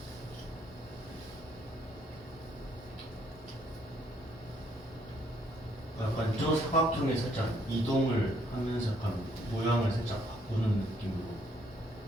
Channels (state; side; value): normal; both; correlation 0.69